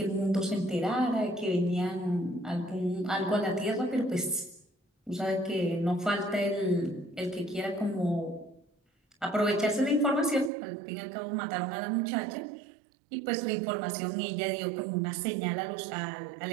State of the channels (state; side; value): drops out; left; at 10.5 s